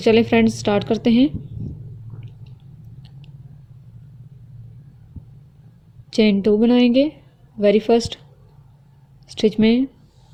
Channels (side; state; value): both; identical; correlation 1.00